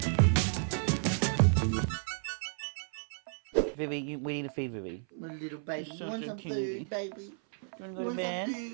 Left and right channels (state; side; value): silent; left; 56 dB below the other